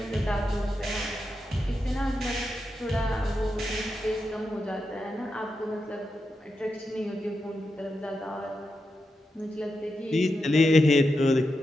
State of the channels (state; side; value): normal; both; correlation 0.87